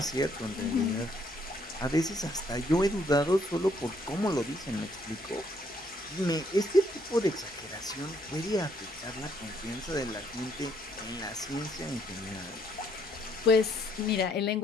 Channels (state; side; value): normal; both; correlation 0.68